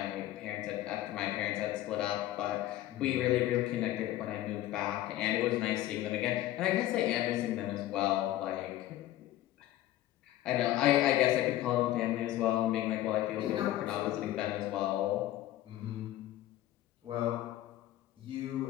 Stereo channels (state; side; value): quieter; right; 14.3 dB